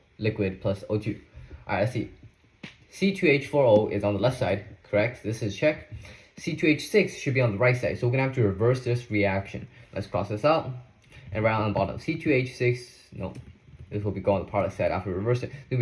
liquid plus O2. Alright, let's see. C2H4O is on the left side, correct? This is check. C2H6 should be on the right side, so we're going to have to reverse this reaction. Let's cross this out and write on the bottom. C2H6, no, this will be going on the product side after we reverse it. It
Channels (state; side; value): identical; both; correlation 1.00